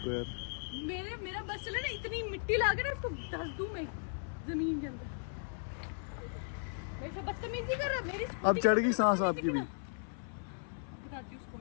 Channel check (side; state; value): right; silent; 54 dB below the other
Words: यार? मेरा बस चला ना, इतनी मिट्टी ला के ना इसको धस दूं मैं जमीन के अंदर। मेरे से बदतमीजी कर रहा है मेरी स्कूटी। अब चढ़ गई सांस आपकी भी? बताती हूँ उसको